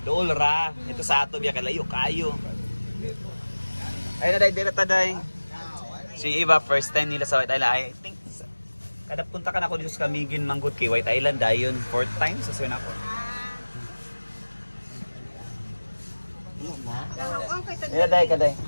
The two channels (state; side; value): inverted; both; correlation -1.00